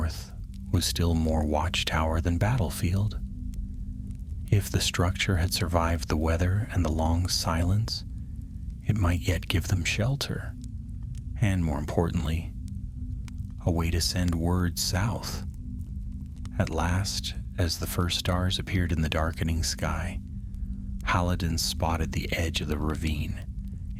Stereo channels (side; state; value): both; identical; correlation 1.00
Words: was still more watchtower than battlefield. If the structure had survived the weather and the long silence, it might yet give them shelter, and more importantly, a way to send word south. At last, as the first stars appeared in the darkening sky, Haladan spotted the edge of the ravine.